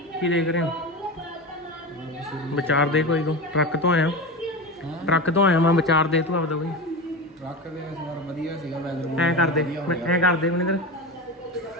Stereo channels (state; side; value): normal; both; correlation 0.23